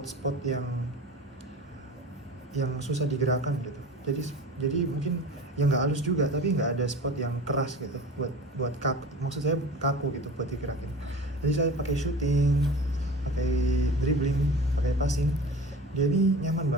yang susah digerakkan gitu. Jadi mungkin yang nggak halus juga, tapi nggak ada spot yang keras gitu buat kaku, maksud saya kaku gitu buat digerakin. Jadi saya pakai shooting, pakai dribbling, pakai passing, dia ini nyaman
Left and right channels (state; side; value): normal; both; correlation 0.37